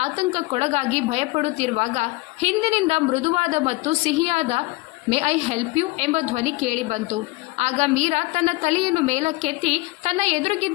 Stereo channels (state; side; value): quieter; right; 22.4 dB